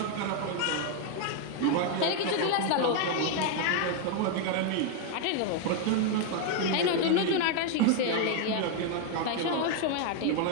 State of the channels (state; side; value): different; both; correlation 0.00